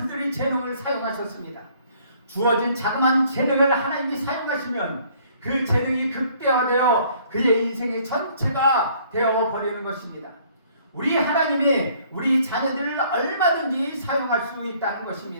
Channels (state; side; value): inverted; both; correlation -0.60